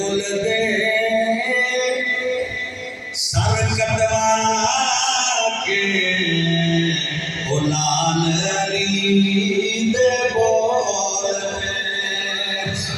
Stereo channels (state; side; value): identical; both; correlation 1.00